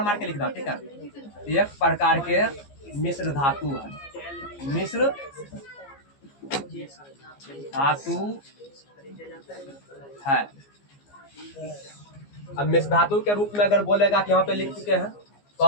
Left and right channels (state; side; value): late; right; 15 ms